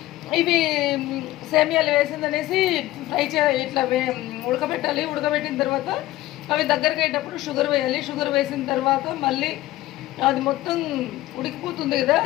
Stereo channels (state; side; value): quieter; right; 16.3 dB